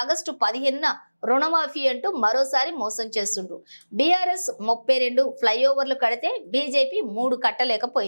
ఆగస్టు 15న రుణమాఫీ అంటూ మరోసారి మోసం చేస్తుండ్రు. బీఆర్ఎస్ 32 ఫ్లైఓవర్లు కడితే బీజేపీ 3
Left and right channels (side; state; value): both; inverted; correlation -1.00